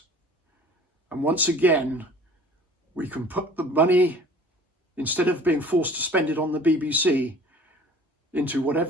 And once again, we can put the money, instead of being forced to spend it on the BBC, into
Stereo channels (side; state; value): both; normal; correlation 0.48